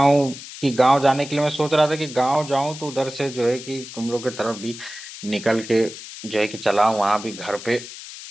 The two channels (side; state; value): left; noise; hiss, 13 dB below the sound